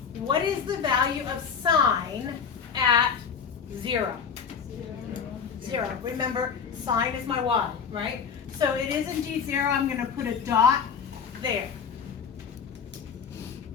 What is the value of sine at 0? 0. Remember, sine is my y, right? So it is indeed 0. I'm going to put a dot there.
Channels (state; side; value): quieter; right; 6.6 dB